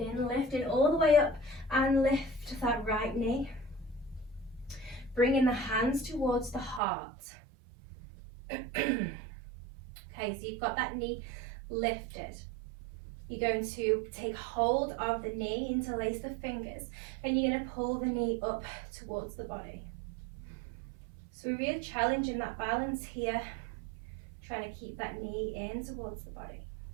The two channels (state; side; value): drops out; left; at 6.8 s